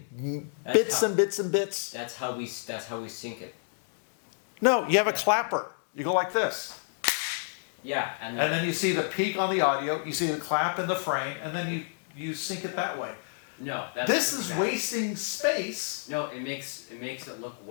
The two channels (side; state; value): right; silent; digital silence